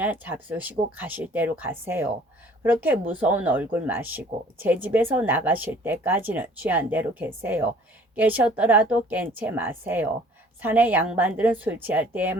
잡수시고 가실 대로 가세요. 그렇게 무서운 얼굴 마시고 제 집에서 나가실 때까지는 취한 대로 계세요. 깨셨더라도 깬 채 마세요. 산의 양반들은 술 취할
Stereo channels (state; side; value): normal; both; correlation 0.53